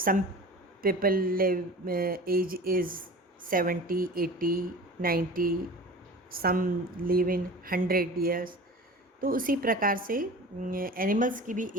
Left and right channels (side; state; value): both; normal; correlation 0.38